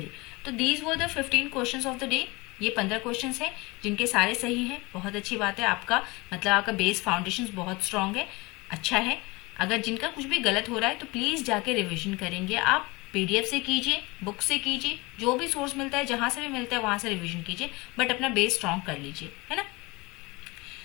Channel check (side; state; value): right; quieter; 24.2 dB